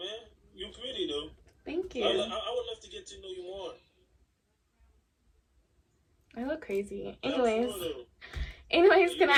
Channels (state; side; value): identical; both; correlation 1.00